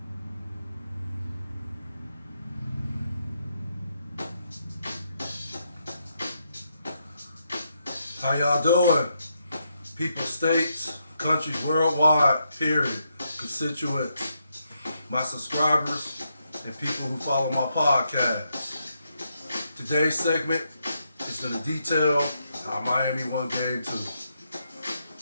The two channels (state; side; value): inverted; both; correlation -0.80